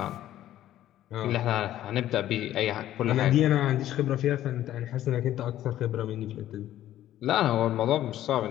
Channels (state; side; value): quieter; right; 12.9 dB